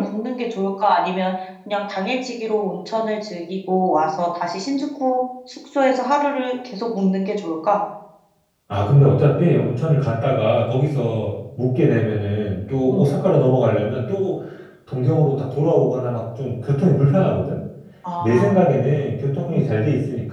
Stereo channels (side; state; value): both; identical; correlation 1.00